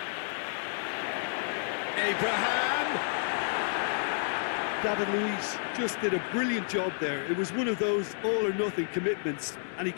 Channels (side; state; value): right; silent; digital silence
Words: Abraham! David Luiz just did a brilliant job there. It was one of those all-or-nothing commitments, and he